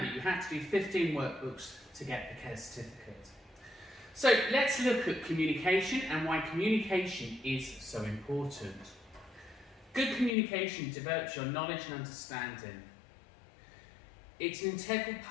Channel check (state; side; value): drops out; right; at 10.3 s